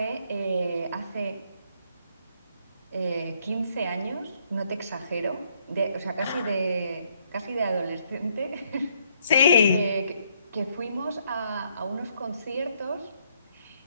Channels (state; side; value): inverted; both; correlation -0.70